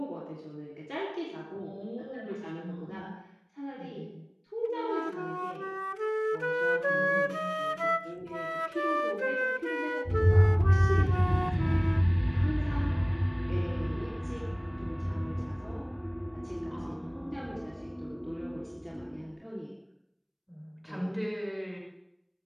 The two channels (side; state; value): both; identical; correlation 1.00